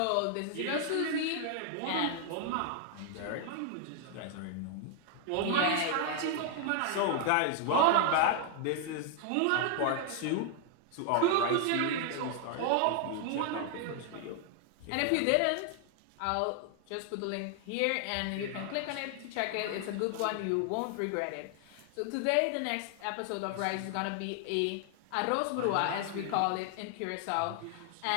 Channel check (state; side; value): different; both; correlation 0.00